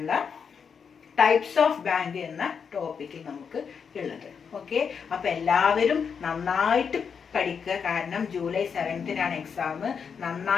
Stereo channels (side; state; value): right; quieter; 6.4 dB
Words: ടൈപ്സ് ഓഫ് ബാങ്ക് എന്ന ടോപ്പിക്കിൽ നമുക്ക് ഉള്ളത്. ഓക്കെ. അപ്പൊ എല്ലാവരും നന്നായിട്ട് പഠിക്കുക. കാരണം ജൂലൈ 7th എക്സാം.